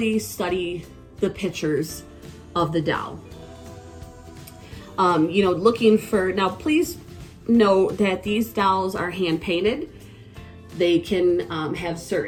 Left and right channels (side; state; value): both; identical; correlation 1.00